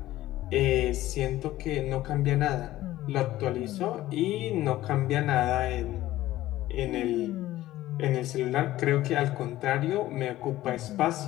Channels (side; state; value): right; quieter; 15.4 dB